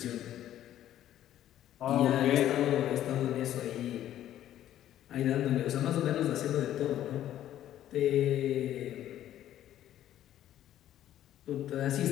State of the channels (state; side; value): quieter; right; 12.1 dB